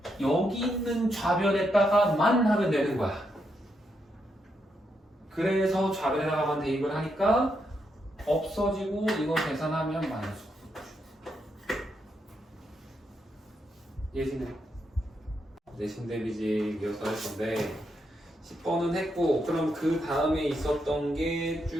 여기 있는 좌변에다가만 하면 되는 거야. 그래서 좌변에다가만 대입을 하니까 없어지고 이거 계산하면 마이너스 999. 예시네. 내신 대비지 이어서 할 건데 10번은 했고, 그럼 그 다음에 있었던 게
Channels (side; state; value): both; normal; correlation 0.81